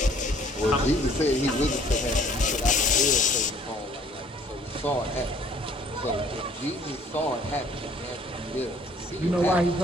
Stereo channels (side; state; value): both; normal; correlation 0.58